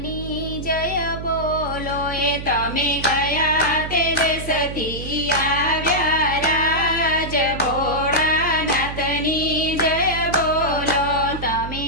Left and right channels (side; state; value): right; noise; hum, 8 dB below the sound